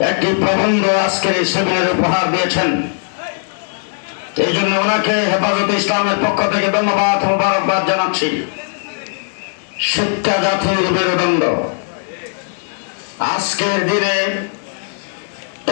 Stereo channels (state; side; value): silent; right; digital silence